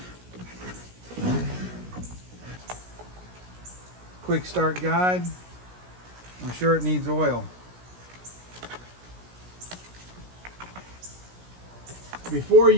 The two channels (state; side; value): late; left; 17 ms